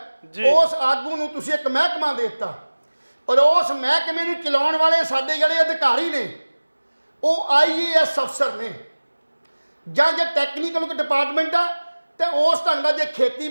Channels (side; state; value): both; inverted; correlation -1.00